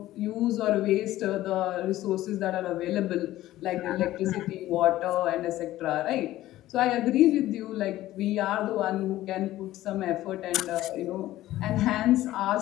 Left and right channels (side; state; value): right; quieter; 15.1 dB